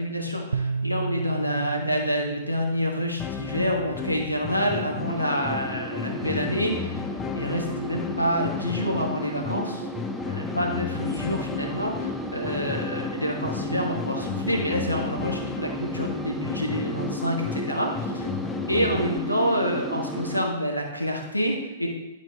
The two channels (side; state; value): both; inverted; correlation -0.47